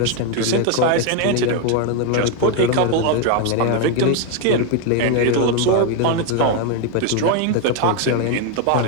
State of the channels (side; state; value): both; different; correlation 0.01